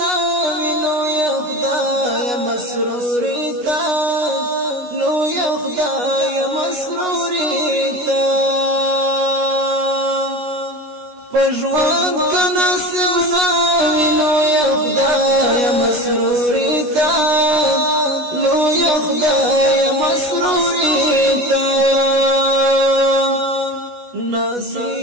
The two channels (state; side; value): late; left; 16 ms